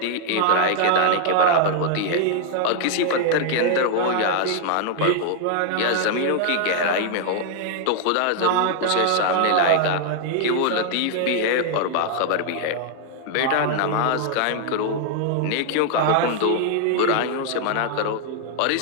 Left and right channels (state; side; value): different; both; correlation 0.00